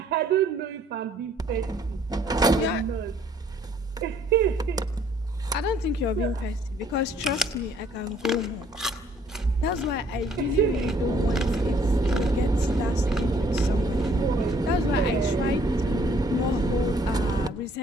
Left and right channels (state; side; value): normal; both; correlation 0.61